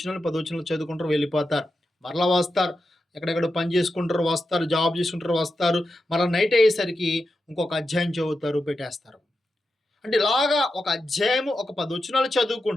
10 వచనాలు చదువుకుంటారు వెళ్ళిపోతారు. మరలా వస్తారు, ఎక్కడెక్కడ పని చేసుకుంటారు వస్తారు, జాబ్ చేసుకుంటారు వస్తారు, మరలా నైట్ అయ్యేసరికి ఇంకొక అధ్యాయం చదువుతారు పెట్టేస్తారు. అంటే ఇలాగా ఒక అధ్యాయము ఒక 10 వచనాలు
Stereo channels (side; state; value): both; normal; correlation 0.89